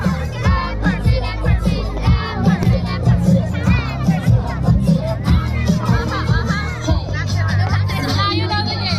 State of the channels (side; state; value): both; identical; correlation 1.00